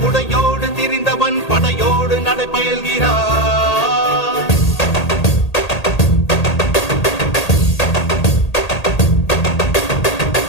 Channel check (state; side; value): late; right; 1.8 ms